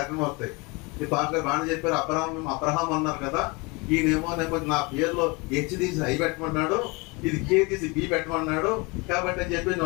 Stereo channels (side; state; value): right; quieter; 27.5 dB